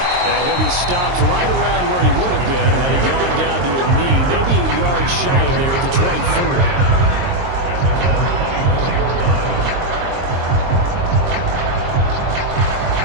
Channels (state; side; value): late; left; 22 ms